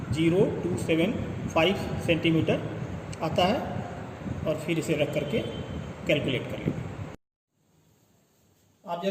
सेंटीमीटर आता है और फिर इसे रख करके कैलकुलेट कर लेंगे।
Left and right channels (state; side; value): identical; both; correlation 1.00